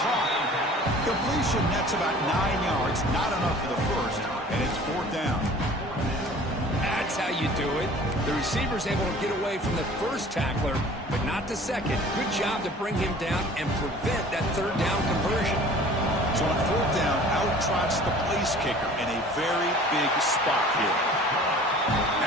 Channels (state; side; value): normal; both; correlation 0.47